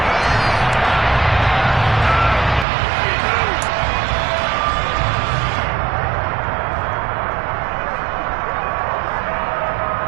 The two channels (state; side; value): drops out; left; at 2.7 s